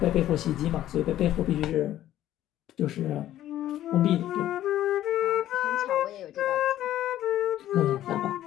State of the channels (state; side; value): quieter; right; 12.9 dB